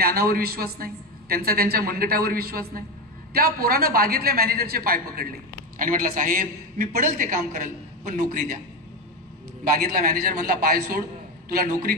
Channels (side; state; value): both; normal; correlation 0.15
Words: विश्वास नाही, त्यांचा त्यांच्या मनगटावर विश्वास नाही. त्या पोरानं बागेतल्या मॅनेजरचे पाय पकडले आणि म्हटलं साहेब मी पडल ते काम करल पण नोकरी द्या. बागेतला मॅनेजर म्हणला पाय सोड, तुला नोकरी